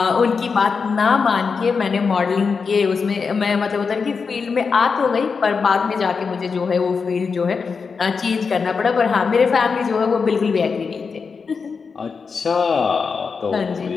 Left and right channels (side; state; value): right; quieter; 5.3 dB